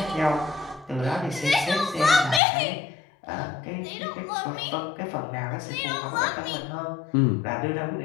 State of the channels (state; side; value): drops out; right; at 2.4 s